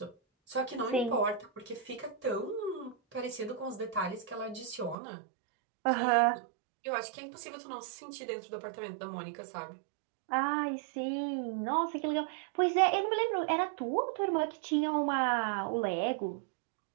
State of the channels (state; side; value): drops out; left; at 5.0 s